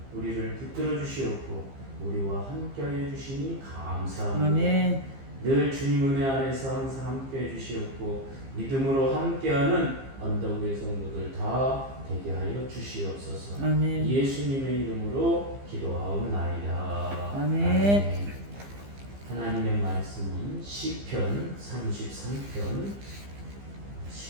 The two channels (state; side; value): late; left; 15 ms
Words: 우리를 붙들어 주시옵고 우리와 함께하여 주시니 감사합니다. 아멘. 늘 주님 은혜 안에서 항상 함께해 주시옵고 믿음으로 함께하는 언덕의 성도들 다 되게 하여 주시옵소서. 아멘. 예수님의 이름으로 기도하옵나이다. 아멘. 하나님의 말씀은 시편 33편